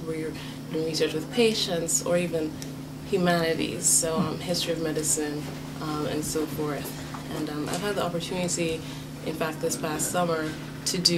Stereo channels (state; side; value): identical; both; correlation 1.00